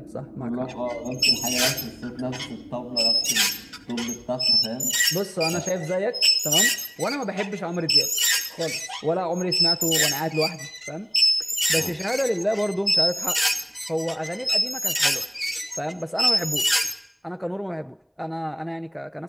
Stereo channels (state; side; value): identical; both; correlation 1.00